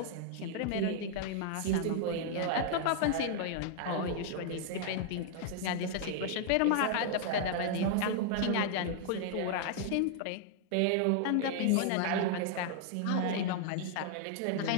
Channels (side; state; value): both; different; correlation 0.00